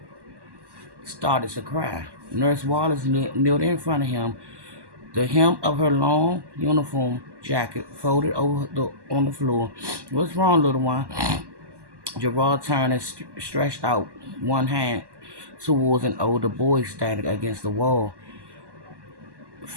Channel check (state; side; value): late; left; 1.1 ms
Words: started to cry. Nurse Wallace kneeled in front of him. The hem of her long uniform jacket folded on the floor. What's wrong, little one? Gerard turned and stretched out one hand towards an older boy standing against the wall.